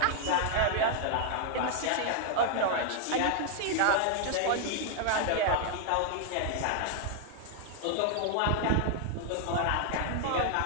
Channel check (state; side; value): different; both; correlation 0.00